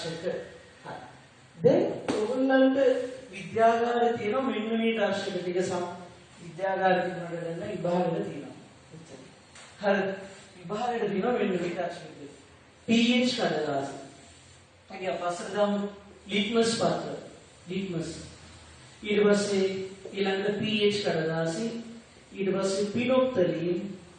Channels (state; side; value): identical; both; correlation 1.00